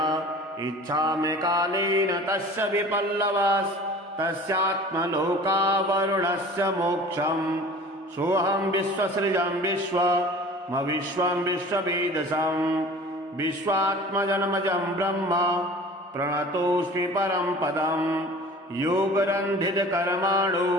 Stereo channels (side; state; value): both; normal; correlation 0.43